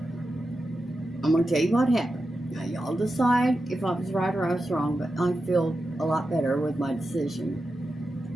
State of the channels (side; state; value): both; normal; correlation 0.90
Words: I'm going to tell you what happened. Now, y'all decide if I was right or I was wrong, but I feel a lot better with my decision.